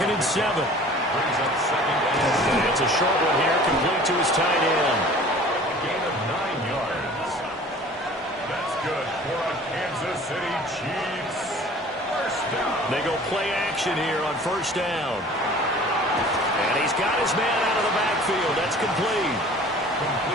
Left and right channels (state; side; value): normal; both; correlation 0.46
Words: and 7. Brings up second and It's a short one here, complete to his tight end. gain of 9 yards. That's good for a Kansas City Chiefs. First down. They go play action here on first down. And he's got his man out of the backfield. That's complete.